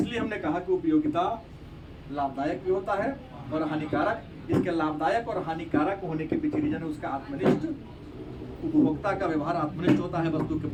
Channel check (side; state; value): both; identical; correlation 1.00